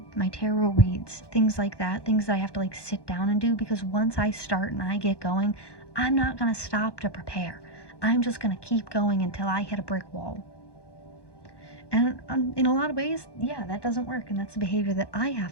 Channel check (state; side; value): late; right; 1.1 ms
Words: tarot reads, things like that, things that I have to like sit down and do, because once I start and I get going, I'm not going to stop to prepare. I'm just going to keep going until I hit a brick wall. And in a lot of ways, yeah, that doesn't work, and that's a behavior that I